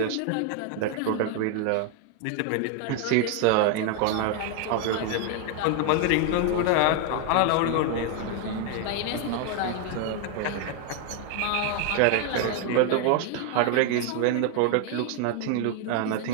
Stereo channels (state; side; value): different; both; correlation 0.01